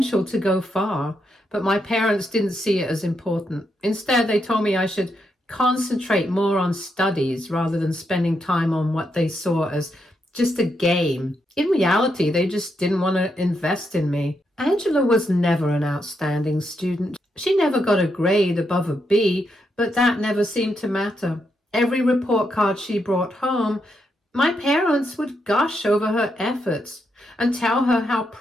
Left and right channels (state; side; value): normal; both; correlation 0.81